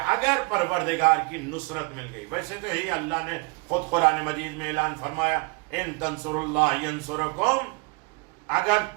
اگر پروردگار کی نصرت مل گئی. ویسے تو ہی اللہ نے خود قرآن مجید میں اعلان فرمایا, ان تنصر اللہ ینصرکم, اگر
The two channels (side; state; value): left; quieter; 30.1 dB